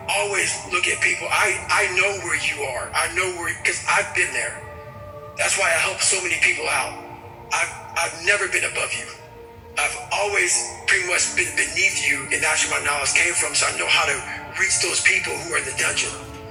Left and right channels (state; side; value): identical; both; correlation 1.00